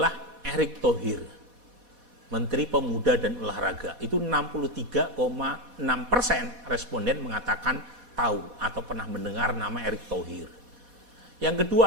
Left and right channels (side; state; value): left; late; 4.1 ms